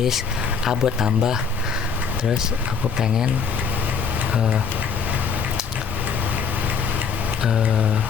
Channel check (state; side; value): quieter; right; 6.1 dB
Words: a buat tambah, terus aku pengen